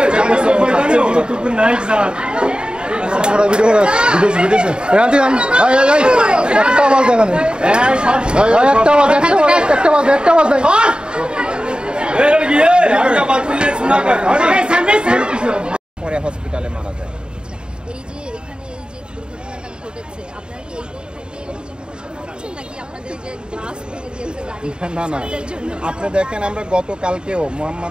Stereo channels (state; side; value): late; left; 0.050 ms